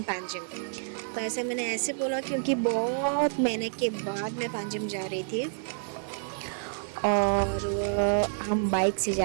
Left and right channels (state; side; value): silent; left; digital silence